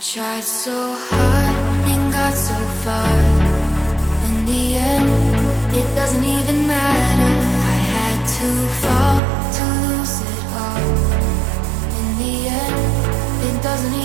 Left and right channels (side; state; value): left; drops out; at 9.2 s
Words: so hard and got so far. In the end, it doesn't even matter. I had to fall to lose it all. In the end, it doesn't